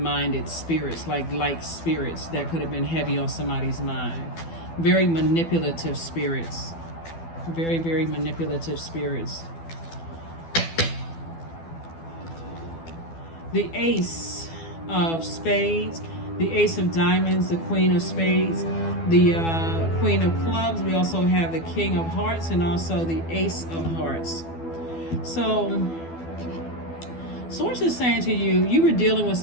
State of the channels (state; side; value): late; right; 12 ms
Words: spirits, like spirits that could have been heavy on somebody's mind. Very manipulative spirits. Very, very manipulative spirits. The Ace of Spades, the Ace of Diamonds, the Queen of Spades, the Queen of Clubs. We also have the King of Hearts and also the Ace of Hearts. So, Source is saying to you, you were dealing with